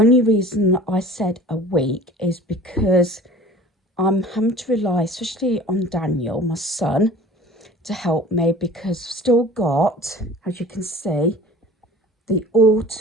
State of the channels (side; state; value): both; normal; correlation 0.43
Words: reason that I said a week is because I'm having to rely, especially on Daniel, my son, to help me, because I've still got, as you can see, the